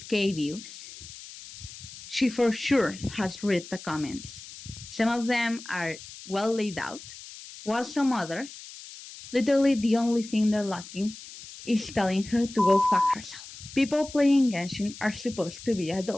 views. She for sure has read the comments. Some of them are well laid out, while some others, literally the only thing they're lacking is telling her to go fuck herself. People playing Genshin are supposed to be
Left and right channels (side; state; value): left; noise; hiss, 15 dB below the sound